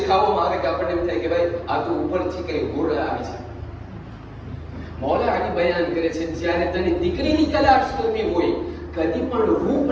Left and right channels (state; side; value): identical; both; correlation 1.00